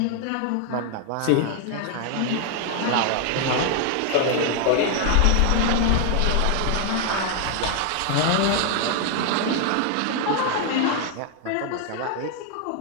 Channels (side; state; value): both; different; correlation 0.00